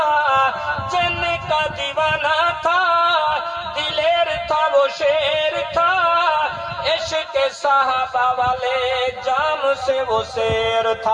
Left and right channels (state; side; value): identical; both; correlation 1.00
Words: جن کا دیوانہ تھا دلیر تھا وہ شیر تھا، عشق صحابہ والے جام سے وہ سیر